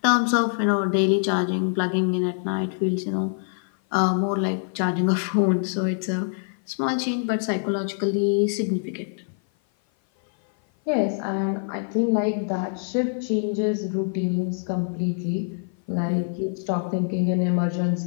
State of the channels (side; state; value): right; silent; 56 dB below the other